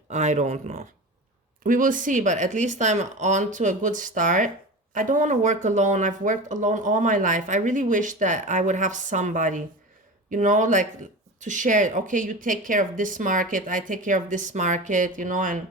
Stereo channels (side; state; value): both; normal; correlation 0.29